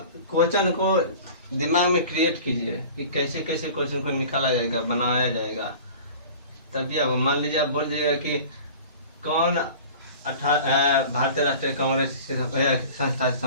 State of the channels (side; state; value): both; inverted; correlation -0.41